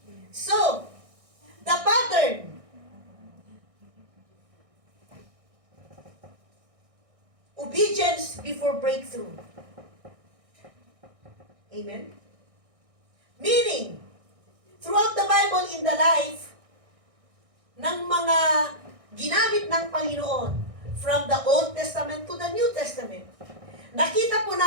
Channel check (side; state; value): left; late; 1.6 ms